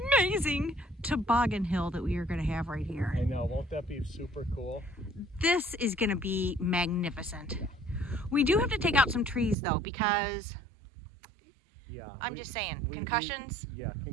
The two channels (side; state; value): left; drops out; at 9.6 s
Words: toboggan hill that we are going to have right here. I know. Won't that be super cool? This is going to be magnificent. We do have to take out some trees though, because I'm just saying, concussions.